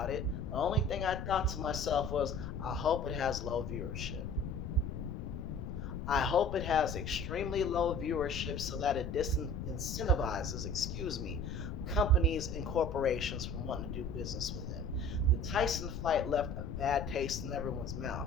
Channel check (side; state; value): left; noise; rumble, 5 dB below the sound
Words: it, the only thing I thought to myself was, I hope it has low viewership. I hope it has extremely low viewership so that it disincentivizes, companies and corporations from wanting to do business with him. The Tyson fight left a bad taste in everyone's mouth.